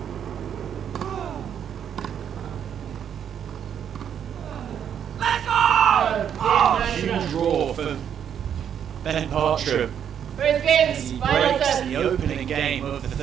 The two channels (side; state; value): left; quieter; 8.7 dB